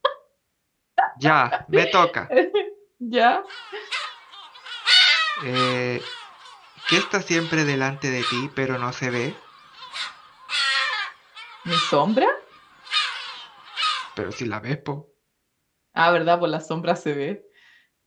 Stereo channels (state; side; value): identical; both; correlation 1.00